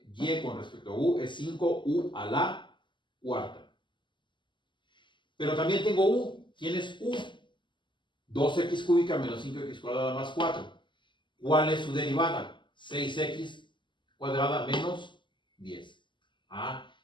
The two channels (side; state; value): right; late; 0.23 ms